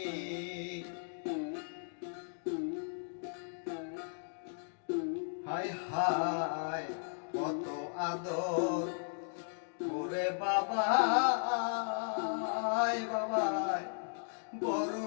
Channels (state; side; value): silent; right; digital silence